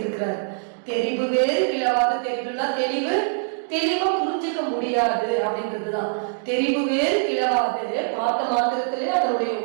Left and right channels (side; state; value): left; silent; digital silence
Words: தெரிவு வேறு கிளவாது. தெரிவுனா தெளிவு, தெளிவா புரிஞ்சுக்க முடியாது அப்படின்றதுதான் தெரிவு வேறு கிளவாது. பார்த்த மாத்திரத்திலே அதனுடைய